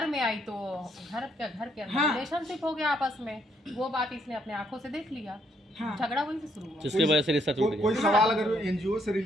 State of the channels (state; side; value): normal; both; correlation 0.71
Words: तो घर के अंदर रिलेशनशिप हो गया आपस में। वो बात इसने अपने आंखों से देख लिया, हाँ। झगड़ा वहीं से शुरू हुआ। जिसकी वजह से रिश्ता टूट कोई गया। सवाल अगर एनजीओ से